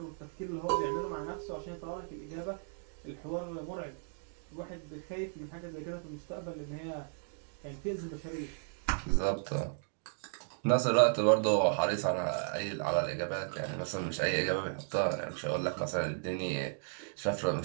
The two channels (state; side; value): silent; left; digital silence